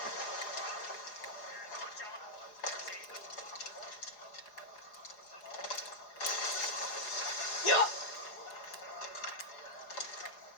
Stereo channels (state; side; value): late; right; 4.8 ms